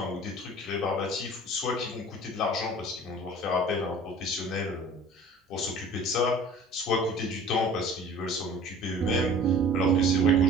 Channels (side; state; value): both; normal; correlation 0.46